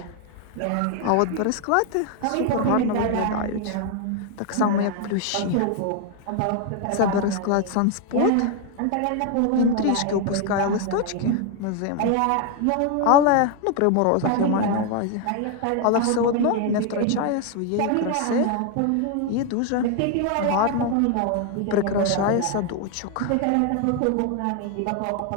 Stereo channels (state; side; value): different; both; correlation 0.01